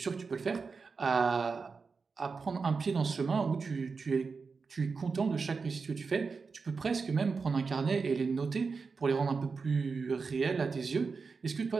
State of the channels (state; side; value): quieter; left; 4.8 dB